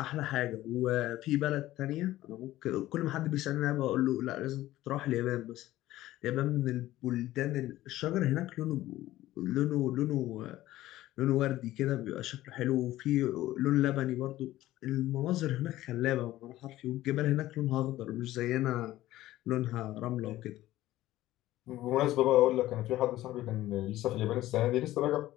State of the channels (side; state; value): right; quieter; 15.5 dB